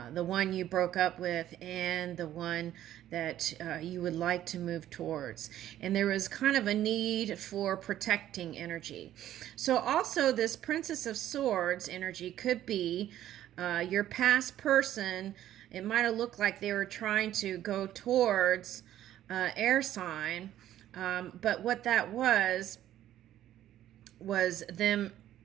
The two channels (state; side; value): quieter; left; 12.4 dB